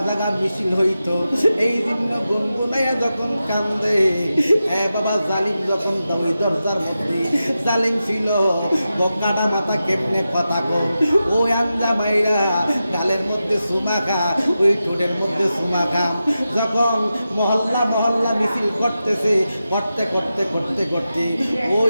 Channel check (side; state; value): both; inverted; correlation -0.91